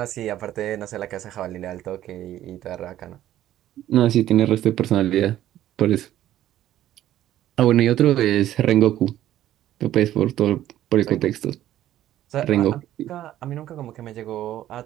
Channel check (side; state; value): left; quieter; 12.9 dB